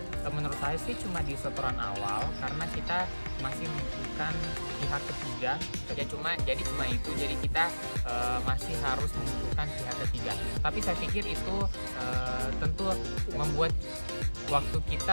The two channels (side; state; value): both; inverted; correlation -1.00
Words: Menurut saya sih cuma di setoran awal karena kita masih membutuhkan pihak ketiga. Jadi cuma itu. Jadi kita masih harus membutuhkan pihak ketiga. Tapi saya pikir itu tentu membuat waktu